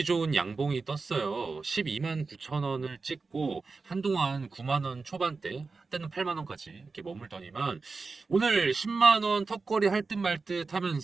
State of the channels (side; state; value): left; quieter; 4.2 dB